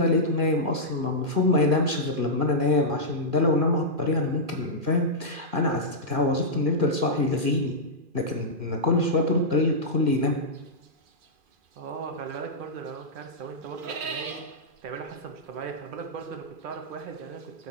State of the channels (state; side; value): late; left; 2.4 ms